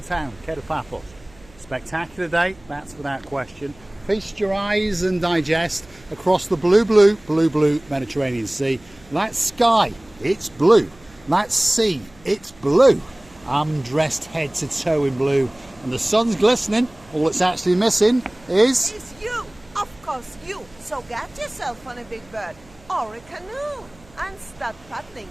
Paphos. Spectacular day, that's without question. Feast your eyes and digest across the blue Mediterranean Sea. That sky, it's blue. That sea, it's blue. I'm dressed head to toe in blue and the sun's glistening. All it's actually missing is... It's you, of course you. So get yourself on a big bird or a canoe and start paddling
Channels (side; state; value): right; noise; hum, 26 dB below the sound